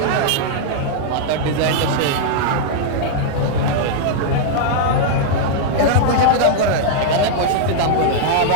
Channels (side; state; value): both; different; correlation -0.01